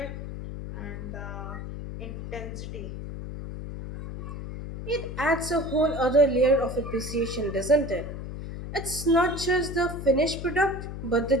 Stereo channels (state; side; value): noise; left; hum, 8 dB below the sound